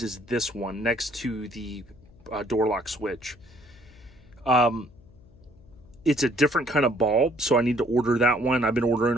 is this one next to the door lock switch. It's a different kind of bulb, so I need to order that one. I've been ordering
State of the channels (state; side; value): noise; left; hum, 25 dB below the sound